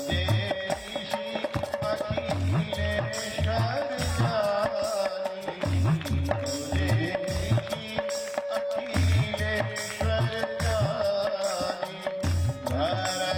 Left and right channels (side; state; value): both; identical; correlation 1.00